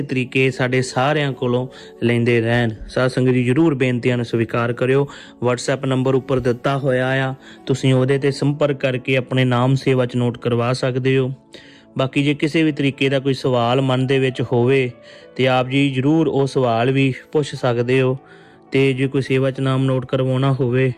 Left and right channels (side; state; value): both; identical; correlation 1.00